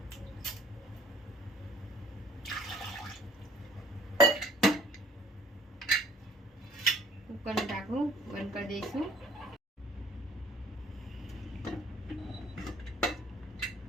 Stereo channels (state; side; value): normal; both; correlation 0.53